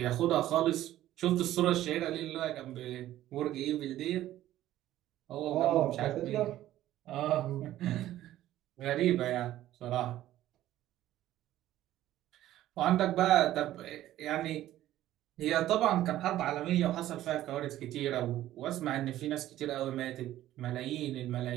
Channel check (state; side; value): quieter; left; 13.8 dB